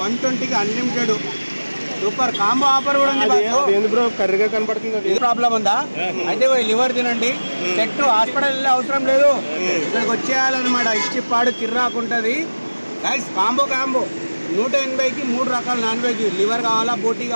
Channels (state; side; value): inverted; both; correlation -1.00